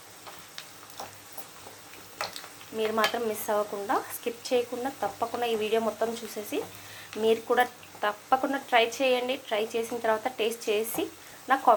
మీరు మాత్రం మిస్ అవ్వకుండా, స్కిప్ చేయకుండా తప్పకుండా ఈ వీడియో మొత్తం చూసేసి మీరు కూడా తప్పకుండా ట్రై చేయండి. ట్రై చేసిన తర్వాత టేస్ట్ చేసి నాకు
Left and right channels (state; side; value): identical; both; correlation 1.00